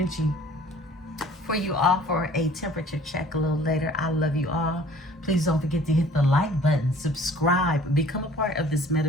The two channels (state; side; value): normal; both; correlation 0.52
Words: for you all for a temperature check a little later. I love you all. Please don't forget to hit the like button, subscribe, become a part of this